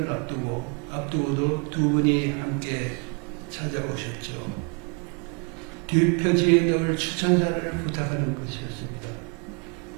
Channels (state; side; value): quieter; left; 35.3 dB